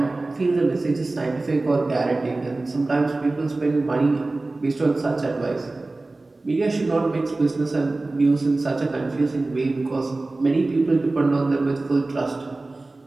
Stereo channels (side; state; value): left; quieter; 3.1 dB